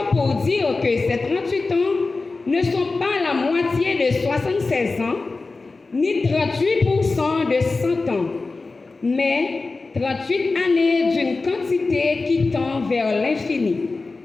pour dire que ces 38 ans ne sont pas la moitié de 76 ans, ni 38% de 100 ans, mais 38 années d'une quantité qui tend vers l'infini.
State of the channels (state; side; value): quieter; right; 3.7 dB